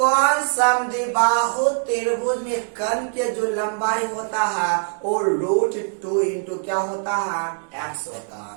समद्विबाहु त्रिभुज में कर्ण के जो लंबाई होता है वो √2 इंटू क्या होता है, x होता है।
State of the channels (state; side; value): silent; left; 62 dB below the other